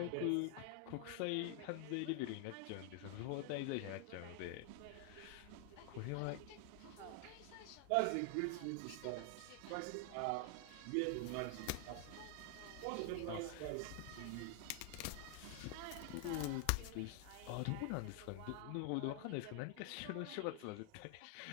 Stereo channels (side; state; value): both; different; correlation 0.00